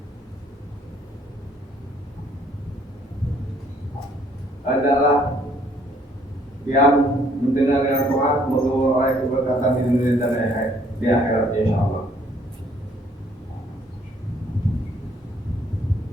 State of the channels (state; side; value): normal; both; correlation 0.63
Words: adalah yang mendengar yang taat memperoleh keberkatan di dunia dan di akhirat insyaallah.